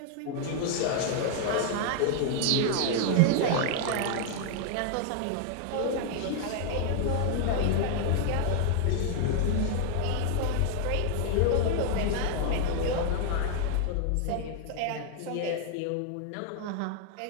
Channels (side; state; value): both; different; correlation 0.00